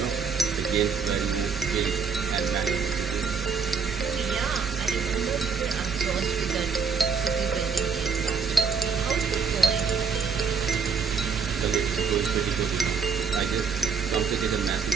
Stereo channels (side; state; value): left; quieter; 5.7 dB